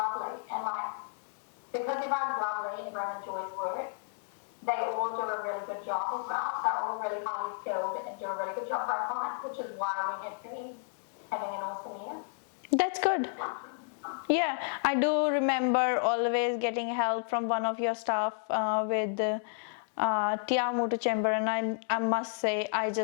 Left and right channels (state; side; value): silent; right; digital silence